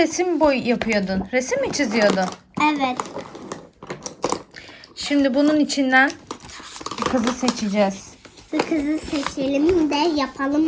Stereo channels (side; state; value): both; identical; correlation 1.00